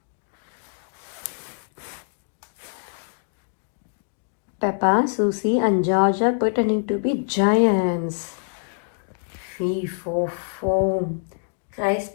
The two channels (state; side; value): silent; right; digital silence